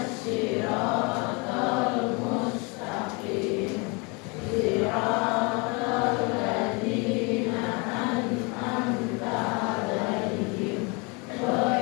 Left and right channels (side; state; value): right; quieter; 30.1 dB